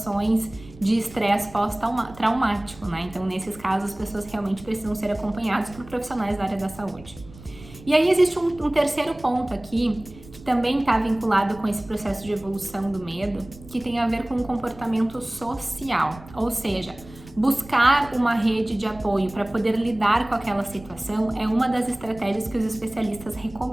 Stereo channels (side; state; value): right; noise; rumble, 19 dB below the sound